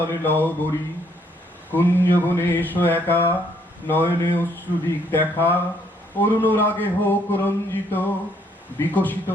লহবরী, কুঞ্জবনে এসো একা, নয়নে অশ্রুদিক দেখা, অরুণ রাগে হোক রঞ্জিত, বিকশিত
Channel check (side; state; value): both; normal; correlation 0.68